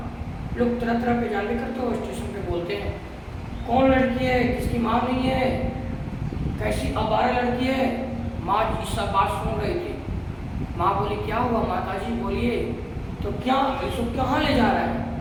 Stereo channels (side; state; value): both; identical; correlation 1.00